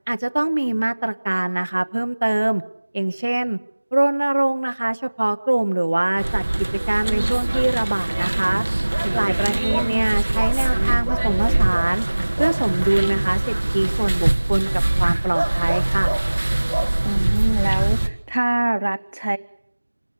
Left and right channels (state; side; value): inverted; both; correlation -1.00